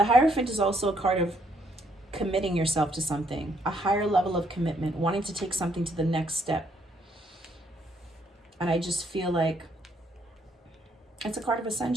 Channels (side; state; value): both; normal; correlation 0.70